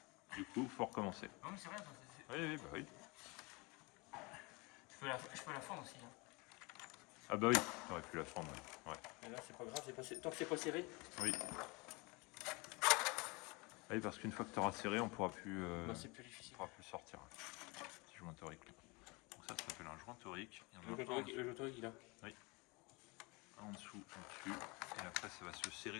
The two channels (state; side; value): quieter; right; 27.0 dB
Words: Du coup, faut recommencer. Non mais c'est rien, ça, Oui, oui, bah oui. je peux la fendre aussi. Hein. Ah bah oui, t'aurais pu la fendre. Ouais. Mais là c'est pas grave, tant que c'est pas serré. Oui. Ah oui, parce qu'une fois que tu auras serré, on pourra plus, Bah, c'est plus difficile. pourra plus le sortir. Petit joint torique. Donc ça s'appelle un joint torique. Il y en a Le un joint torique, il a. un en dessous, en dessus, et après ça va se